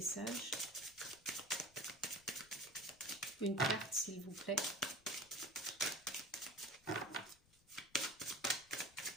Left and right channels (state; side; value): noise; left; rumble, 28 dB below the sound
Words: Une carte, s'il vous plaît.